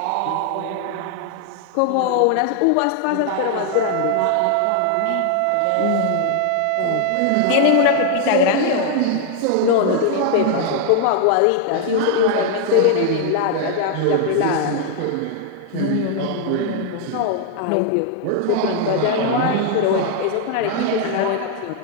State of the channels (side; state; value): both; different; correlation 0.00